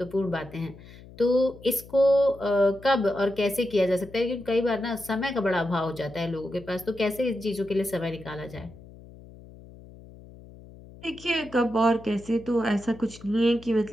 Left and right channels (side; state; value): left; noise; hum, 19 dB below the sound